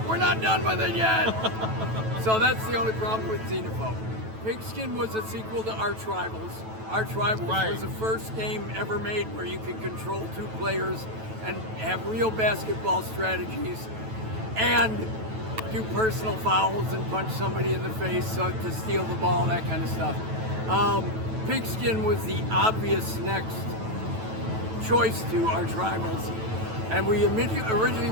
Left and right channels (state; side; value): late; left; 9.1 ms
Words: we're not done with it yet. So that's the only problem with Xenophobe. Pigskin was a sequel to Arch Rivals. Arch Rivals was the first game ever made where you could control 2 players and have real basketball strategies and do personal fouls and punch somebody in the face to steal the ball, that kind of stuff. Pigskin was the obvious next choice to Arch Rivals. And we originally